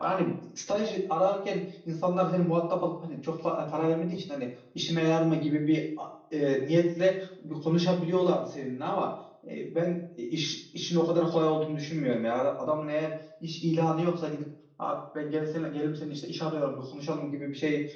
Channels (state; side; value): identical; both; correlation 1.00